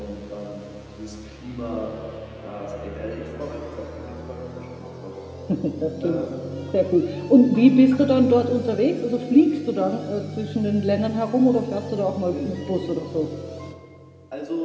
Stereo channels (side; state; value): both; identical; correlation 1.00